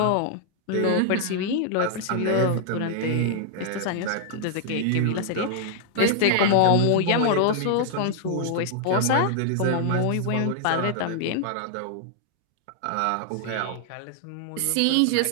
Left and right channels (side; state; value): both; different; correlation -0.01